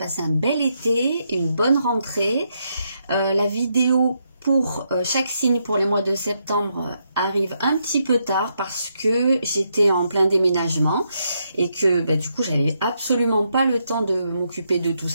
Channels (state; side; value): inverted; both; correlation -0.80